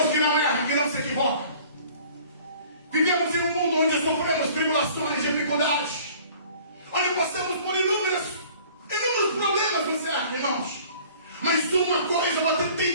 que não erra, que não se equivoca. Vivemos em um mundo onde sofremos tribulações, dificuldades, onde passamos por inúmeros problemas no céu, irmãos. Mas uma coisa você tem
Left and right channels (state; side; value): inverted; both; correlation -0.50